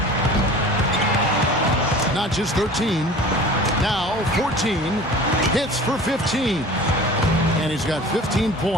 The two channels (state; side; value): normal; both; correlation 0.42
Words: Not just 13. Now 14. Hits for 15. And he's got 15